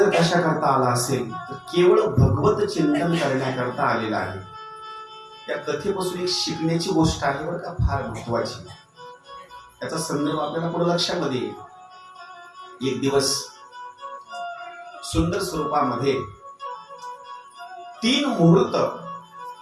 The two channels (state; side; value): identical; both; correlation 1.00